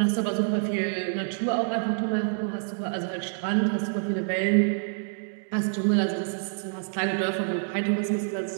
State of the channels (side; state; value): left; silent; digital silence